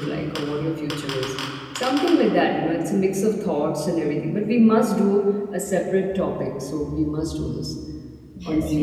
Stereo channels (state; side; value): identical; both; correlation 1.00